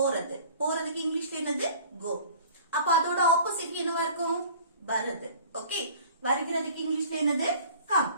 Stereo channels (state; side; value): inverted; both; correlation -0.47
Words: போறதுக்கு இங்கிலீஷ்ல என்னது? கோ. அப்ப அதோட ஆப்போசிட் என்னவா இருக்கும்? வருது. ஓகே, வருகிறதுக்கு இங்கிலீஷ்ல என்னது? கம்.